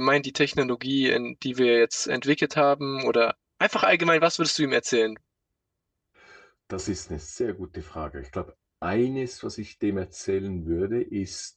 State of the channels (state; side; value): identical; both; correlation 1.00